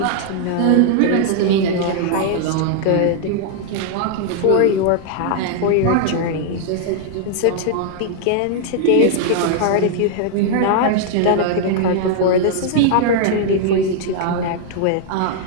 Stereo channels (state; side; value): different; both; correlation -0.01